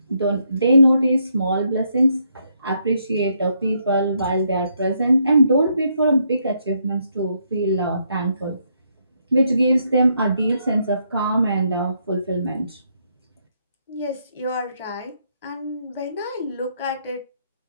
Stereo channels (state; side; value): inverted; both; correlation -0.75